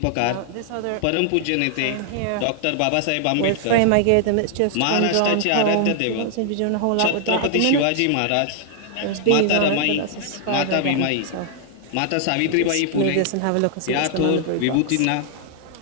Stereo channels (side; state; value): both; different; correlation 0.00